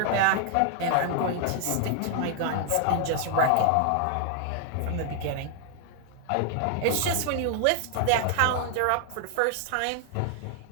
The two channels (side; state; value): both; different; correlation 0.00